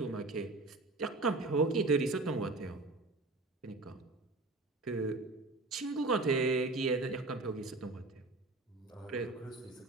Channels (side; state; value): left; quieter; 3.2 dB